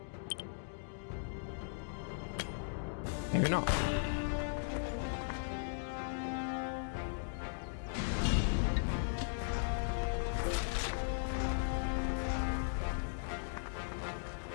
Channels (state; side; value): silent; right; digital silence